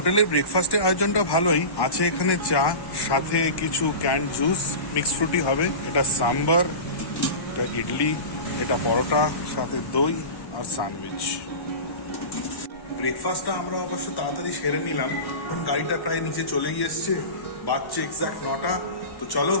ব্রেকফাস্টের আয়োজনটা ভালোই আছে। এখানে চা, সাথে কিছু ক্যান্ড জুস, মিক্স ফ্রুটি হবে। এটা সাম্বার, এটা ইডলি, এটা পরোটা, সাথে দই আর স্যান্ডউইচ। ব্রেকফাস্টটা আমরা অবশ্য তাড়াতাড়ি সেরে নিলাম। এখন গাড়িটা প্রায় নিচে চলেই এসছে, বাজছে এক্সাক্ট 9টা। তো চলো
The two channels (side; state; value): right; late; 1.1 ms